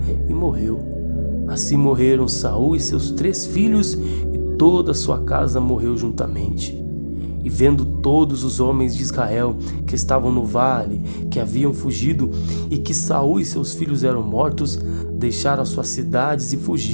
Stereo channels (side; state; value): both; inverted; correlation -1.00